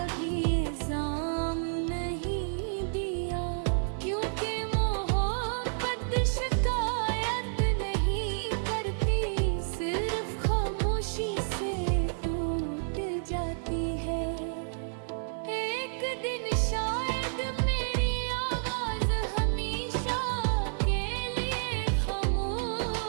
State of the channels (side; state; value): left; silent; 58 dB below the other